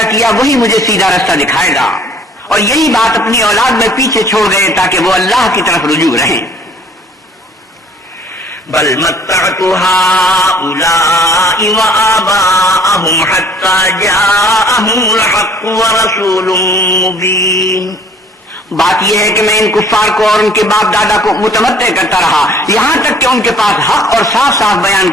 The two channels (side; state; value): both; normal; correlation 0.55